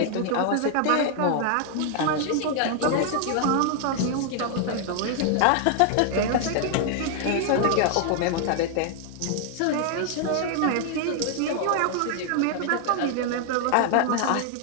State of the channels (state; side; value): different; both; correlation 0.00